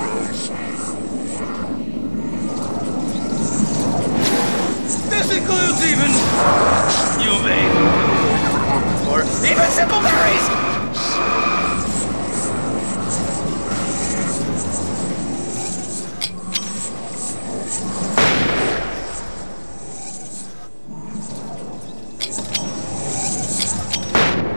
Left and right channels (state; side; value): inverted; both; correlation -1.00